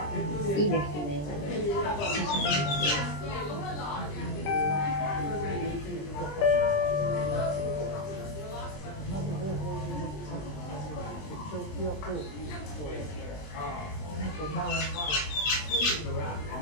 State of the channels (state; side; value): late; right; 20 ms